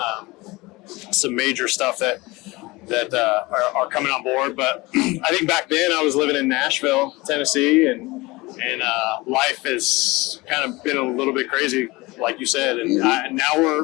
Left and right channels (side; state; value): right; quieter; 22.2 dB